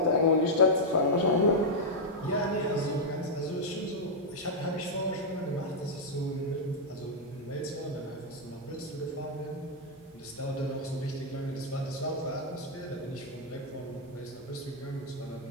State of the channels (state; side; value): normal; both; correlation -0.04